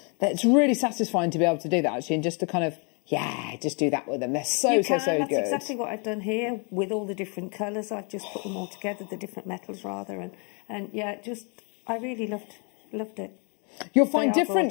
It's really satisfying to be able to do that, actually, and just to kind of. Yeah, just do that with them. They're so good. That's exactly what I've done here with all the different colours. I've just put them all together, the different metals rather, and I really loved it. You'll find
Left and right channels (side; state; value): right; quieter; 35.5 dB